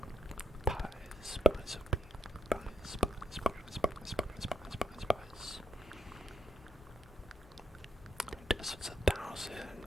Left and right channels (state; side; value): normal; both; correlation 0.77